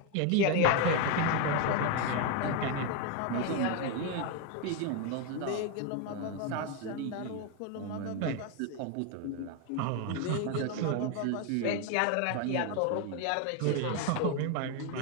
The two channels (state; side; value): different; both; correlation 0.01